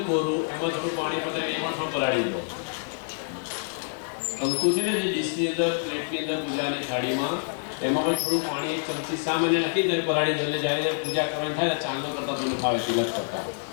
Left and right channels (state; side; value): silent; right; digital silence